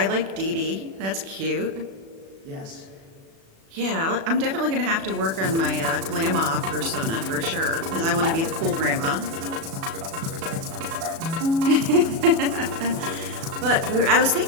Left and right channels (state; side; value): late; left; 36 ms